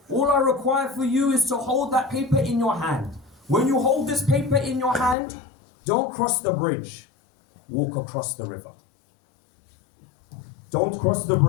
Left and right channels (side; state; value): right; drops out; at 5.2 s